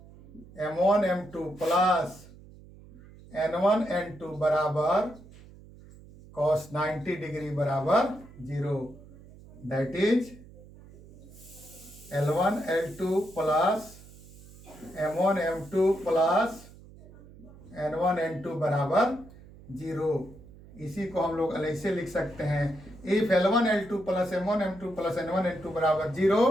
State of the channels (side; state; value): right; noise; hum, 20 dB below the sound